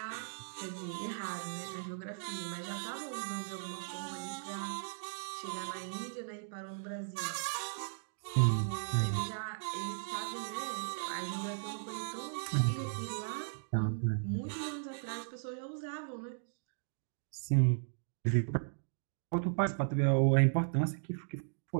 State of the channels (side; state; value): left; silent; digital silence